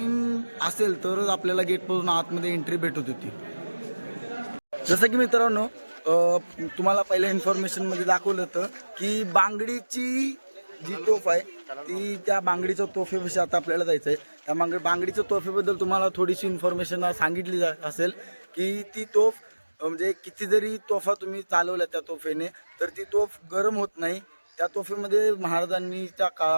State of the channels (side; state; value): both; inverted; correlation -1.00